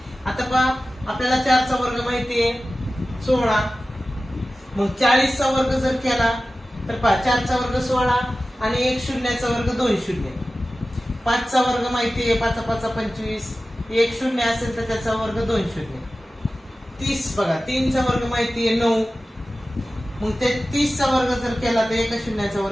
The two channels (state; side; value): normal; both; correlation 0.95